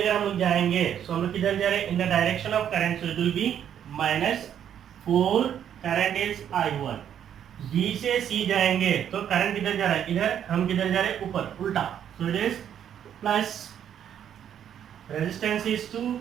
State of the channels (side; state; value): left; quieter; 9.5 dB